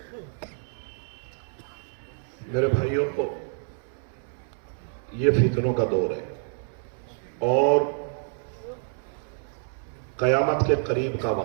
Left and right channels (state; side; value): silent; left; 60 dB below the other